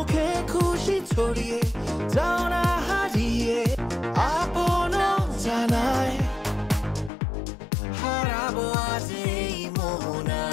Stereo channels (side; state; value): right; drops out; at 7.1 s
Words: খুশি ছড়িয়ে যাও না হারিয়ে আপন জানায় হারাবো আজ এই